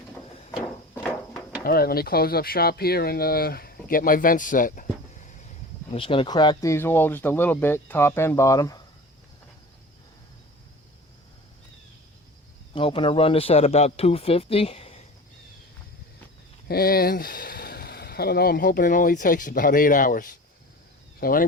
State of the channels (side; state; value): both; normal; correlation 0.37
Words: Alright, let me close up shop here and get my vents set. I'm just going to crack these all just a little bit, top and bottom. I'm hoping to run this at about 250. And I don't know, I'm hoping it only takes about 8 hours. So